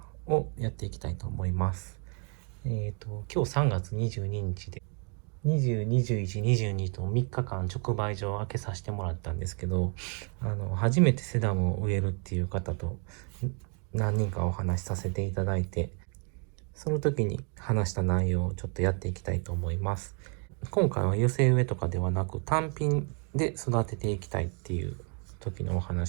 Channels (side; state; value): left; quieter; 38.5 dB